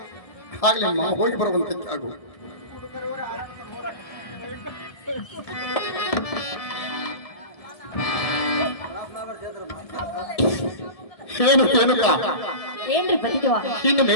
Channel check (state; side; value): late; right; 1.7 ms